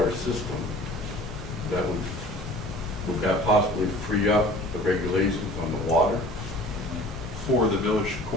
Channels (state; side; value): normal; both; correlation 0.46